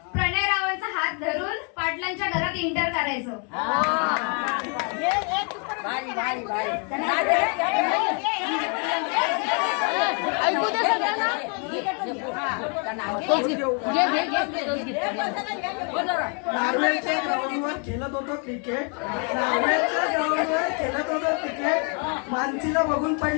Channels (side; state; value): right; quieter; 38.3 dB